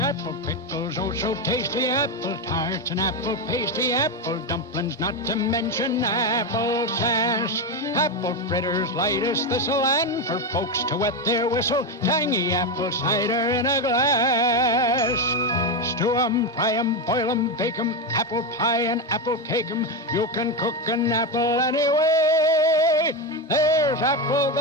pickles, oh so tasty, apple tarts and apple pasty, apple dumplings, not to mention apple sass. Apple fritters, light as thistle, and for folks to wet their whistle, tangy apple cider in a glass. Stew 'em, fry 'em, boil 'em, bake 'em, apple pie and apple cake 'em. You can cook an apple anyway. There's apple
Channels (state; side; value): normal; both; correlation 0.11